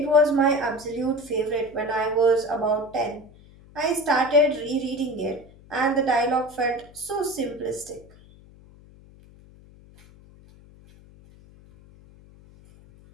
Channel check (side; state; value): left; noise; hum, 24 dB below the sound